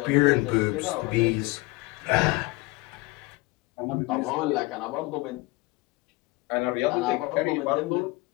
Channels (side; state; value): right; quieter; 22.7 dB